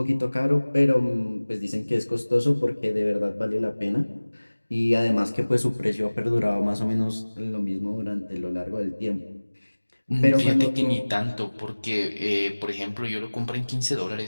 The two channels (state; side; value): inverted; both; correlation -1.00